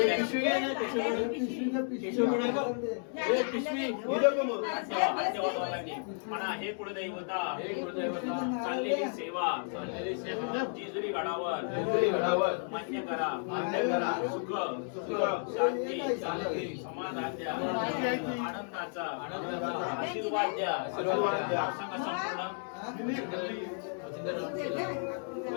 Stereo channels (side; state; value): right; silent; 56 dB below the other